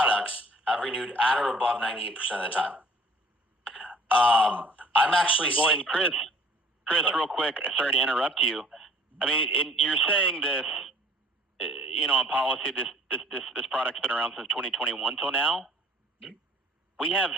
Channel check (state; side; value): normal; both; correlation 0.55